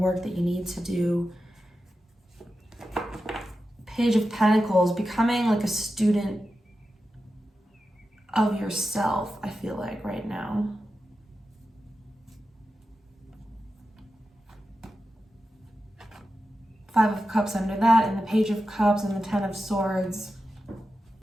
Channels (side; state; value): both; normal; correlation 0.91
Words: that you need to do. Page of Pentacles, becoming like a student of yourself, I feel like right now. Five of Cups under that, and the Page of Cups and the Ten of Swords.